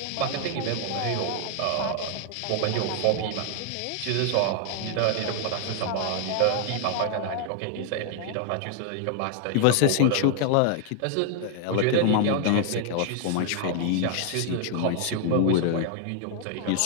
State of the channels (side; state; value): both; different; correlation 0.00